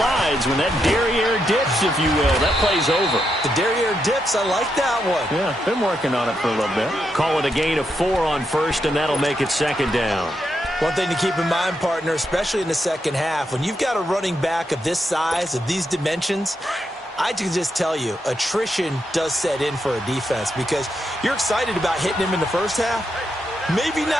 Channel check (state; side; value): normal; both; correlation 0.82